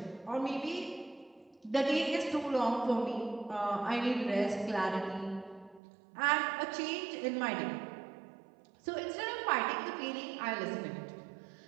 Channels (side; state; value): left; drops out; at 5.8 s